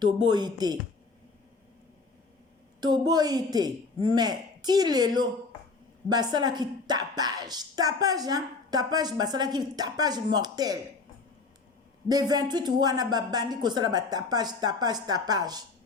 toboyi te mais ti lelo basalaki tapage basalaki tapage mortel de 28 wana babandi kosala tapage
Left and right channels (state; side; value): quieter; right; 4.1 dB